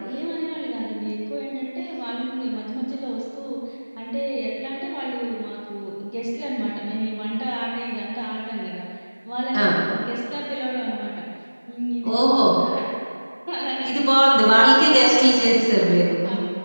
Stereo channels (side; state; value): both; inverted; correlation -1.00